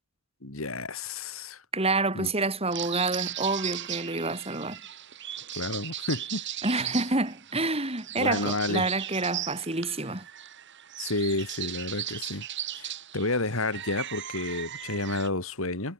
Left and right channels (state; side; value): normal; both; correlation 0.06